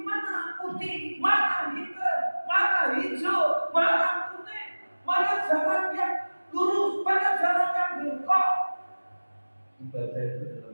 putih, mana hitam, mana hijau, mana kuning, mana jalan yang lurus, mana jalan yang bengkok. Ibadah itu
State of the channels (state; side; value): inverted; both; correlation -1.00